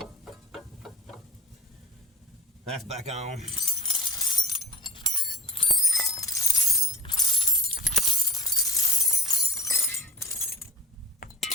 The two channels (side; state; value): both; normal; correlation 0.36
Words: That's back on.